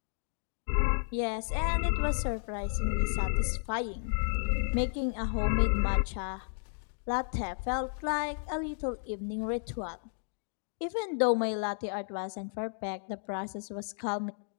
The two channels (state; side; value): silent; right; digital silence